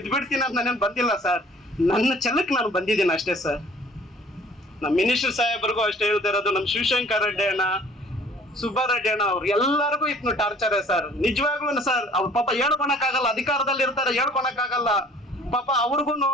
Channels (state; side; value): normal; both; correlation 0.52